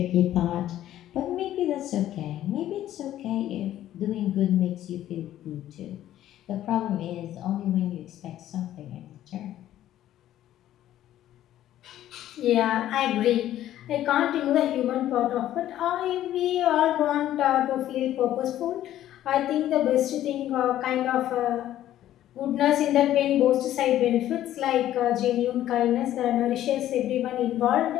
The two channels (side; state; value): right; quieter; 12.7 dB